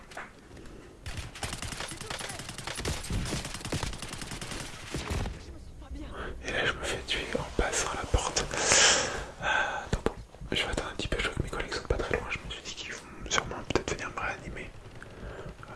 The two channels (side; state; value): both; identical; correlation 1.00